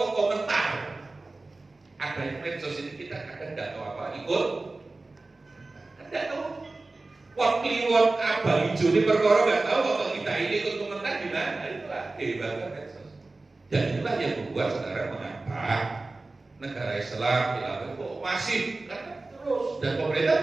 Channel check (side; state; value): left; quieter; 3.3 dB